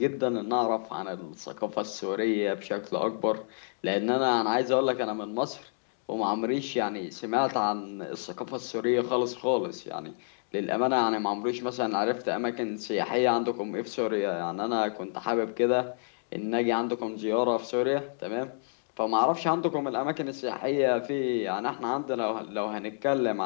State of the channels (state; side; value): silent; right; digital silence